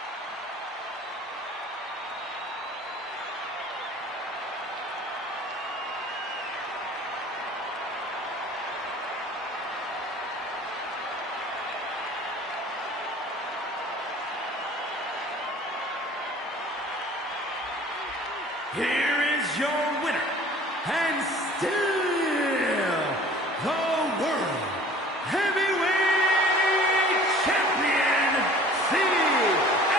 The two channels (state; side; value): normal; both; correlation 0.48